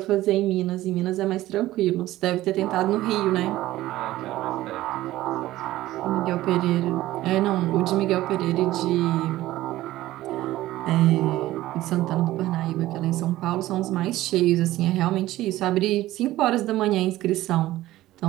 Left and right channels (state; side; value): quieter; left; 15.8 dB